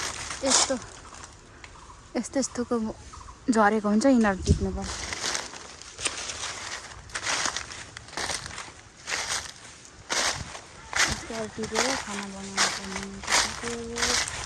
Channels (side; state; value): both; identical; correlation 1.00